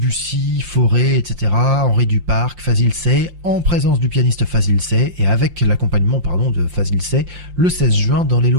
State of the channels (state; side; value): late; left; 5.7 ms